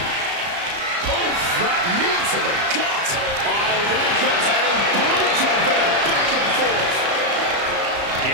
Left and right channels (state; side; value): late; left; 34 ms